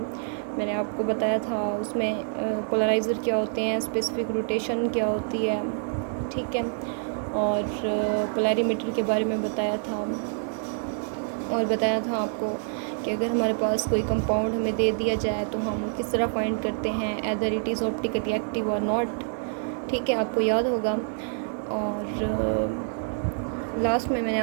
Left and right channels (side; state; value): left; silent; 60 dB below the other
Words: आपको बताया था उसमें पोलराइज़र क्या होते हैं, स्पेसिफिक रोटेशन क्या होती है। ठीक है, और पोलैरिमीटर के बारे में बताया था, और बताया था आपको कि अगर हमारे पास कोई कंपाउंड हमें दे दिया जाए तो हम किस तरह फाइंड करते हैं either it is optically active और नॉट। ठीक है, आपको याद होगा। और लास्ट में मैंने